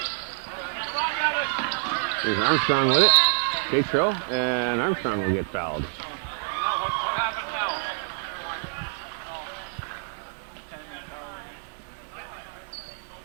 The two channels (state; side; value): silent; left; digital silence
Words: There's Armstrong with it. Tatro, and Armstrong will get fouled.